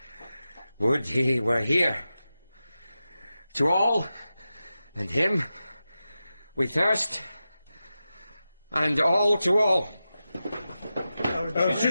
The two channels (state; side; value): inverted; both; correlation -0.92